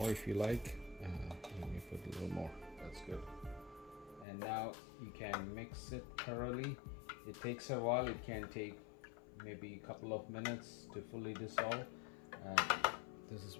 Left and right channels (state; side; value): drops out; right; at 4.2 s